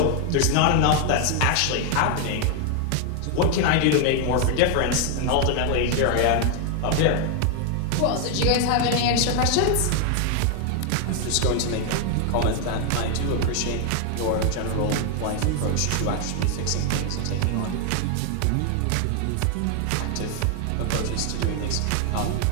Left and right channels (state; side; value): different; both; correlation 0.00